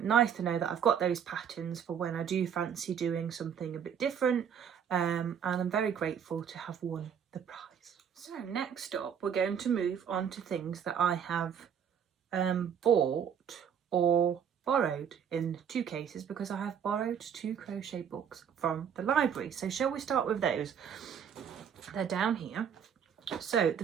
to know that I've got those patterns for when I do fancy doing something a bit different, and I'm very grateful to have won the prize. So next up, we're going to move on to things that I have bought or borrowed in 2 cases, because I have borrowed 2 crochet books from the library. So shall we start with those? They're down here. So the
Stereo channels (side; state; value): left; quieter; 8.0 dB